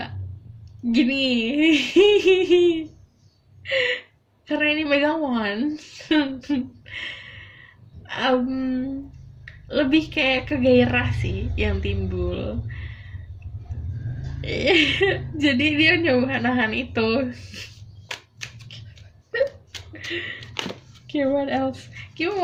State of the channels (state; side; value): identical; both; correlation 1.00